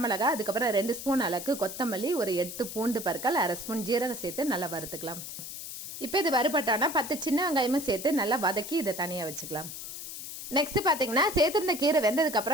அதுக்கப்புறம் 2 ஸ்பூன் அளவுக்கு கொத்தமல்லி, ஒரு 8 பூண்டு பற்கள், 1/2 ஸ்பூன் ஜீரகம் சேர்த்து நல்லா வறுத்துக்கலாம். இப்போ இது வறுபட்டானா 10 சின்ன வெங்காயமும் சேர்த்து நல்லா வதக்கி இதை தனியாக வச்சுக்கலாம். நெக்ஸ்ட் பாத்தீங்கன்னா, சேர்த்துருந்த கீரை வெந்ததுக்கு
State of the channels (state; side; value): noise; left; hiss, 9 dB below the sound